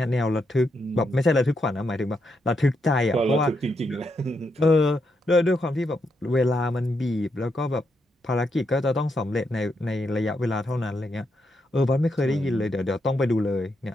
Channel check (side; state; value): both; normal; correlation 0.81